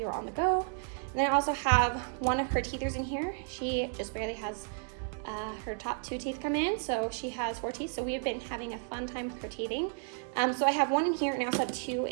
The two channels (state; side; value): silent; left; 56 dB below the other